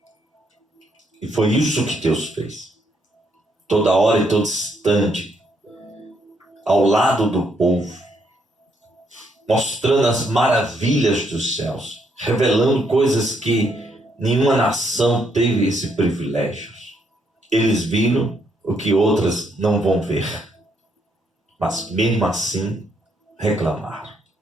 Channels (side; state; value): both; normal; correlation 0.74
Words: E foi isso que Deus fez. Toda hora e todo instante, ao lado do povo, mostrando as maravilhas dos céus, revelando coisas que nenhuma nação teve esse privilégio. Eles viram o que outras não vão ver, mas mesmo assim reclamaram,